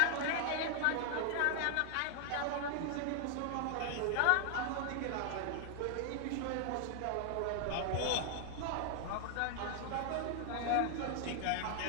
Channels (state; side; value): different; both; correlation 0.00